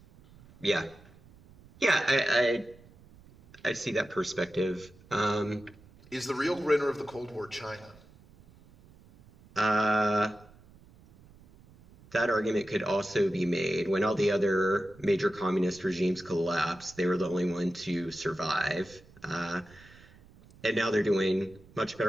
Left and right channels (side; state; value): right; noise; rumble, 25 dB below the sound